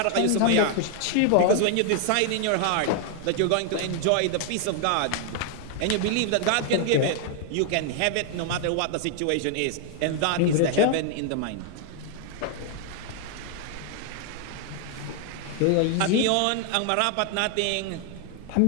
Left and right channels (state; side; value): different; both; correlation 0.00